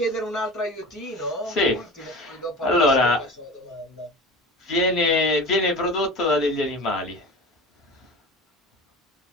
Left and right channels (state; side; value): normal; both; correlation 0.34